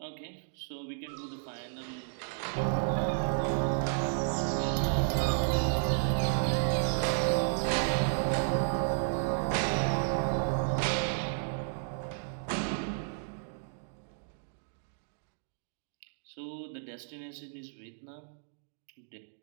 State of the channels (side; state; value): left; silent; digital silence